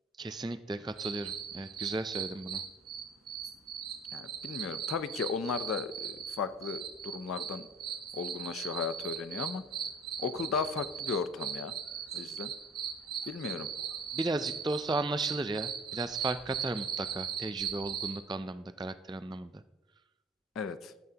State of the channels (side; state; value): both; normal; correlation 0.47